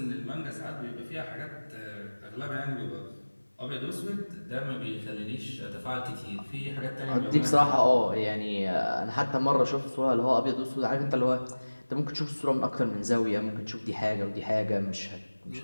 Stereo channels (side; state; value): both; inverted; correlation -1.00